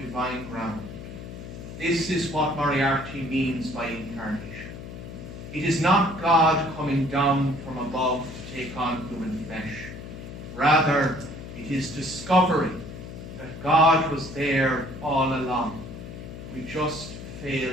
ground. This is what Moriarty means by incarnation. It is not God coming down from above to take on human flesh. Rather, it is discovering that God was there all along. We just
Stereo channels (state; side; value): noise; left; hum, 11 dB below the sound